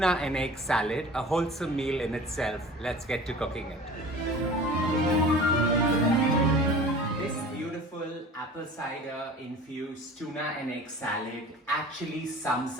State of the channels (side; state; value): both; normal; correlation 0.41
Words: and egg salad, a wholesome meal in itself. Let's get to cooking it. This beautiful apple cider infused tuna and egg salad actually sums